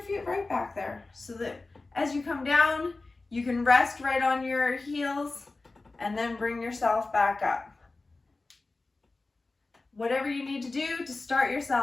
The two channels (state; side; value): quieter; right; 3.4 dB